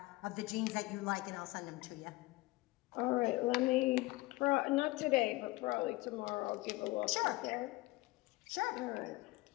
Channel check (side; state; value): right; quieter; 21.4 dB